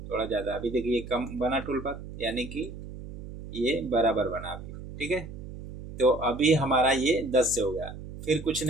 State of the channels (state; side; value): noise; right; hum, 11 dB below the sound